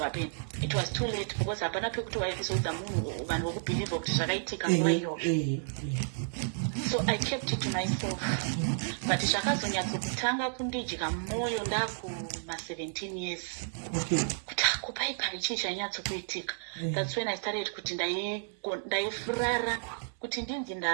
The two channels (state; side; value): silent; left; digital silence